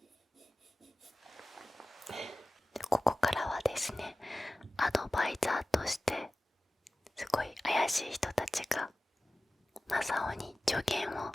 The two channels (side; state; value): both; normal; correlation 0.96